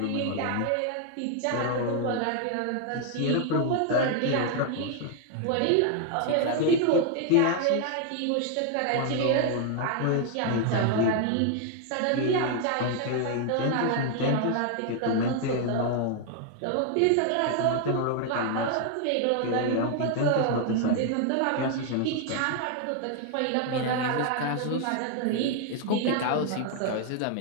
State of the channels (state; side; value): different; both; correlation 0.00